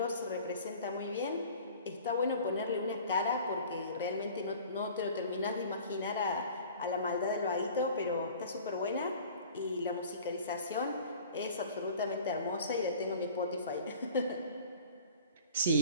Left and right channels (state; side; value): inverted; both; correlation -0.46